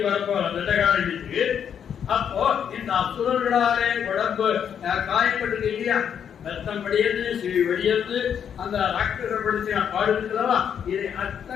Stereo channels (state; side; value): quieter; right; 8.3 dB